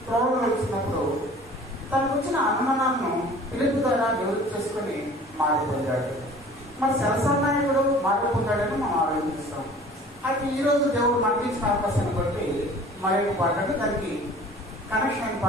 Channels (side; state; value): both; normal; correlation 0.47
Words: త్రోవలో వచ్చినప్పుడు తనకు వచ్చిన అనుమానాలను పిలుపు ద్వారా నివృత్తి చేసుకుని మారిపోయాడు. మరి సరసనాయకుడు మారిపోతాడని మనం ఆలోచిస్తాం. అయితే ఈరోజు దేవుడు మనకి ఇచ్చిన అవకాశాన్ని బట్టి మరొక పాఠాన్ని దానికి కనెక్షన్